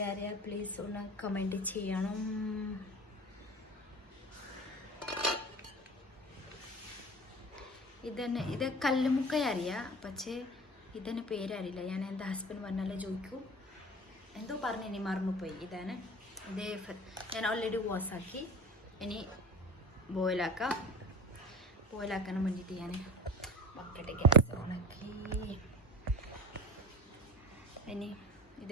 പ്ലീസ് ഒന്ന് കമൻറ്റ് ചെയ്യണം. ഇത് കല്ലുമുക്ക അറിയാം, പക്ഷേ ഇതിന് പേരറിയില്ല. ഞാൻ എൻ്റെ ഹസ്ബൻഡ് പറഞ്ഞാലേ ചോദിക്കൂ, എന്തോ പറഞ്ഞു, ഇനി മറന്നുപോയി. ഇതാണ് ഇത്. ഞാൻ ഓൾറെഡി വാഷാക്കി, ഇനി ബോയിലാക്കാൻ വേണ്ടിയിട്ട് ഞാൻ ബക്കറ്റ് ഗ്യാസ് ഓണാക്കി. ഇനി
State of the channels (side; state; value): both; normal; correlation 0.34